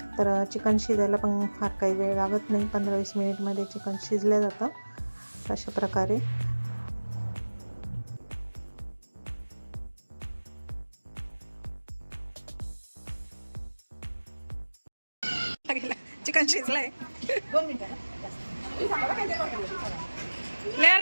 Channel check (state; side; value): inverted; both; correlation -1.00